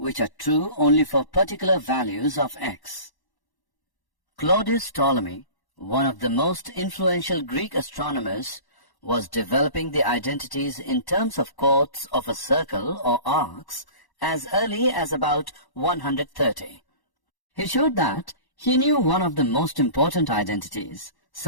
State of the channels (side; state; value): right; late; 1.1 ms